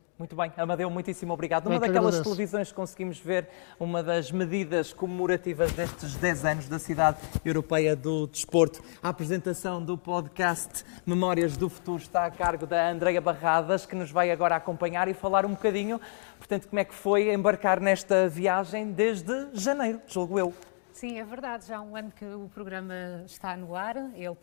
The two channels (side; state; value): right; silent; digital silence